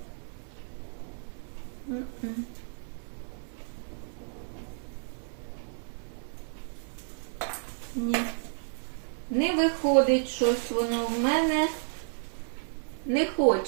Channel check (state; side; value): silent; left; 57 dB below the other